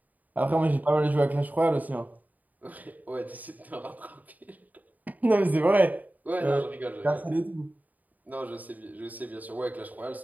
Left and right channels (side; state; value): left; late; 0.078 ms